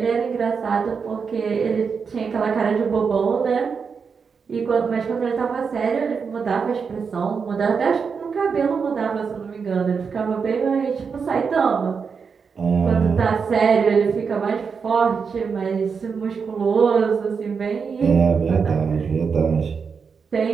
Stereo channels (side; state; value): left; quieter; 5.8 dB